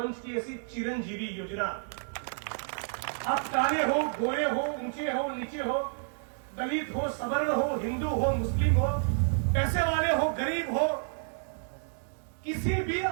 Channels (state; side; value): silent; left; digital silence